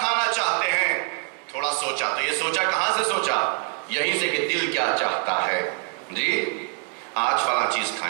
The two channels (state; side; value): quieter; left; 36.9 dB